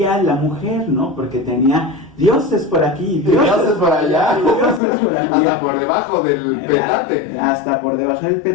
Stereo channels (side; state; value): right; drops out; at 4.8 s